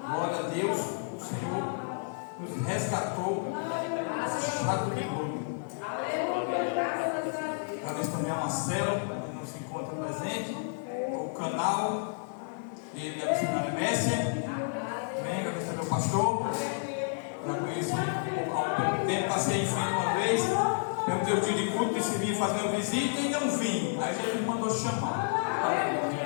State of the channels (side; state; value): right; silent; 57 dB below the other